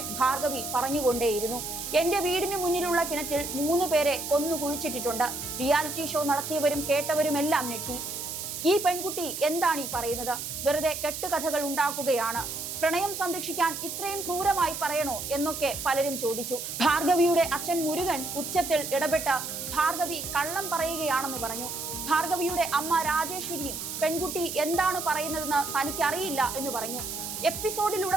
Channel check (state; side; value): noise; right; hiss, 6 dB below the sound